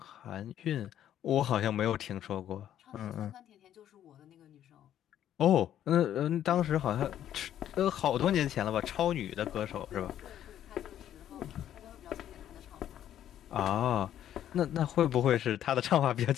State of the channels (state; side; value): quieter; right; 11.0 dB